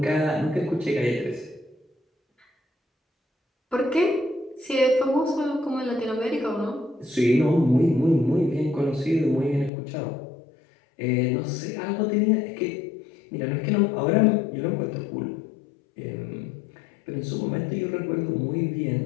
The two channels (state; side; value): drops out; right; at 9.7 s